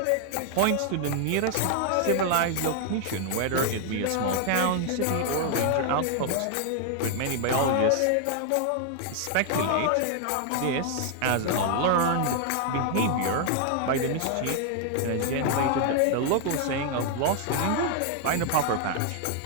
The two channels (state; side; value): different; both; correlation 0.00